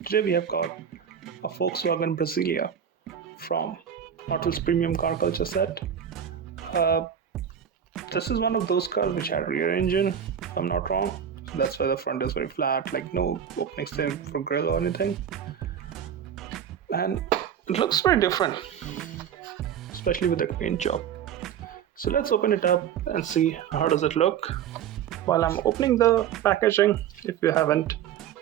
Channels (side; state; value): left; quieter; 8.7 dB